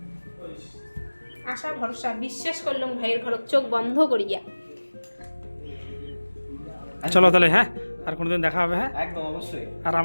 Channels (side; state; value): both; inverted; correlation -1.00